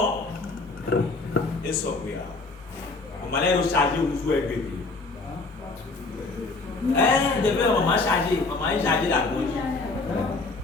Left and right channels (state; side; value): quieter; right; 3.6 dB